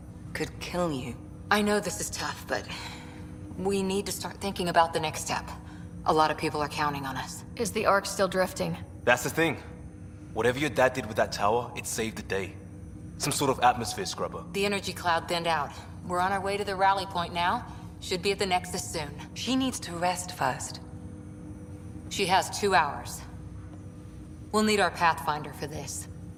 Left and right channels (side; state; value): both; identical; correlation 1.00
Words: could kill you. I know this is tough, but we need to start thinking about the next step. A lot of people are counting on us. Is the Ark still drifting? That's the thing. Whatever your dad did with that tower, it saved the day. Some sort of atmosphere scrubber. The energy cloud thinned out. We're on our way to the rally point now. Should be at the Nexus soon. She needs to rest first. She has 2 hours. We'll need our Pathfinder for this.